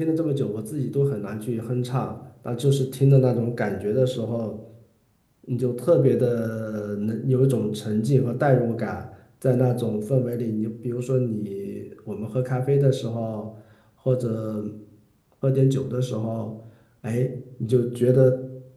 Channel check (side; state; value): both; identical; correlation 1.00